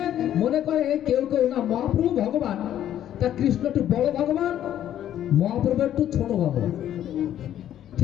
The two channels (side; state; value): right; quieter; 11.3 dB